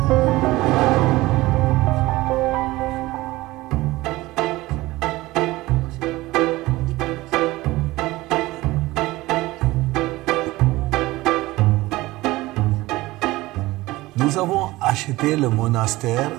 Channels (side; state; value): left; quieter; 19.0 dB